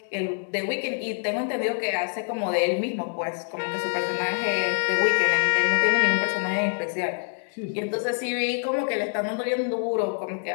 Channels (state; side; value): silent; right; digital silence